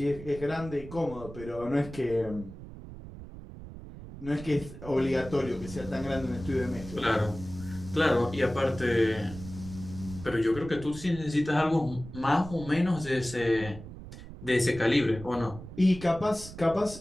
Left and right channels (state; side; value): noise; right; rumble, 14 dB below the sound